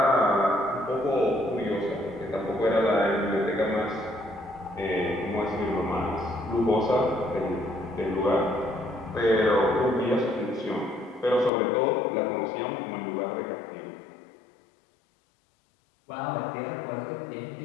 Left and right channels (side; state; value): right; drops out; at 11.5 s